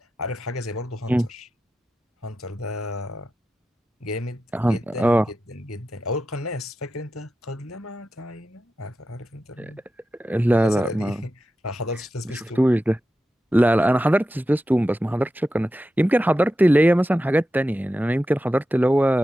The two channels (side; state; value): both; normal; correlation 0.91